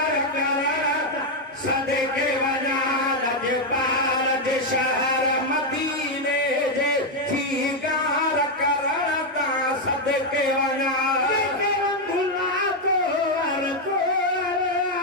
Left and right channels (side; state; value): both; normal; correlation 0.02